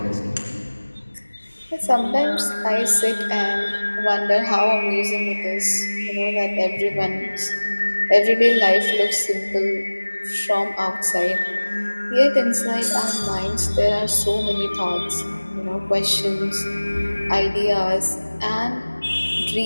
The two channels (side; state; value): both; inverted; correlation -1.00